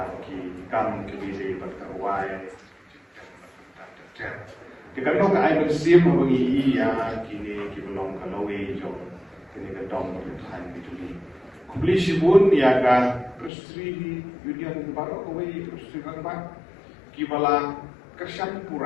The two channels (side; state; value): right; drops out; at 13.5 s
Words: ki kam kebiri berkawai kita tahu ke air bersih mengi ia kini belum kalau jo kini kedong berthai bituli kubli sibun ia ka prestri union baru kawai prestri rangba kibala Kersan